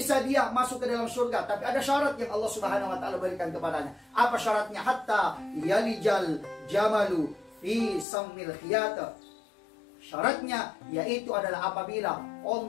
dia masuk ke dalam surga, tapi ada syarat yang Allah Subhanahu wa Ta'ala berikan kepadanya. Apa syaratnya? Hatta yalijal jamalu fi sammil khiyat. Syaratnya yaitu adalah apabila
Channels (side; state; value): right; drops out; at 8.1 s